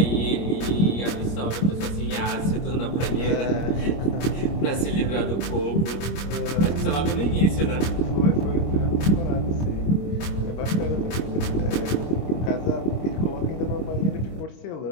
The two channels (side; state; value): right; late; 25 ms